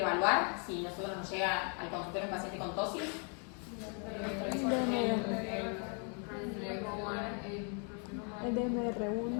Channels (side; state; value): right; quieter; 39.8 dB